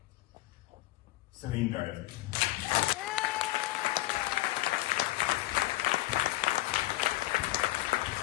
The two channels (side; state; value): right; quieter; 18.3 dB